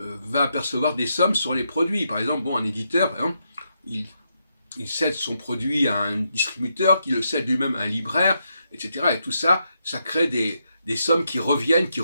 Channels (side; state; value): both; inverted; correlation -0.81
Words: percevoir des sommes sur les produits. Par exemple, un éditeur, par exemple, il cède son produit à un distributeur, qui le cède lui-même à un libraire, etc. Et tout ça, ça crée des sommes qui reviennent, qui